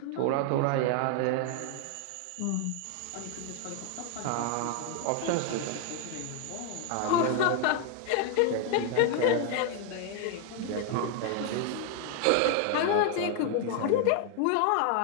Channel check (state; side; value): different; both; correlation 0.00